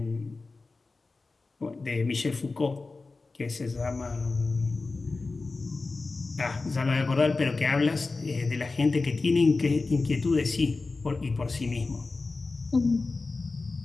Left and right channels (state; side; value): quieter; right; 3.8 dB